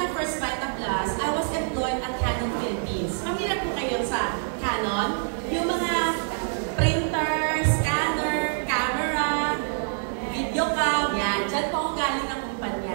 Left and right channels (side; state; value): left; silent; digital silence